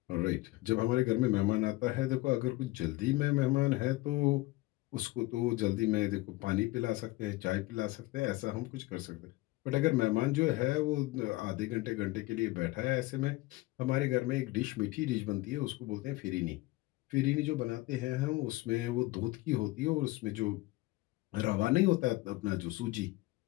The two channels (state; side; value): quieter; right; 20.2 dB